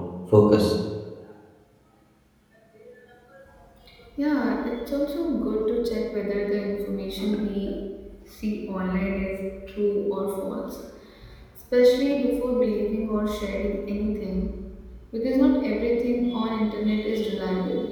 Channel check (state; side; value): identical; both; correlation 1.00